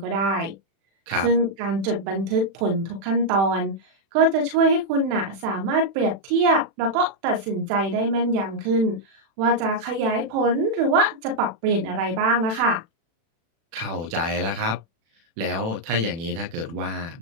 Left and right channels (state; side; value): late; left; 36 ms